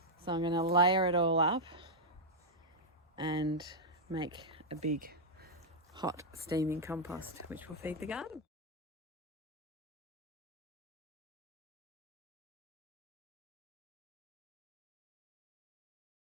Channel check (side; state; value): both; normal; correlation -0.04